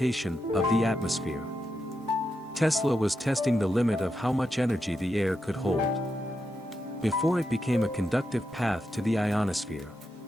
of the atmosphere. Tesla was testing the limit of how much energy the air could hold before it became a conductive path to the ionosphere.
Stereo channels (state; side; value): normal; both; correlation 0.85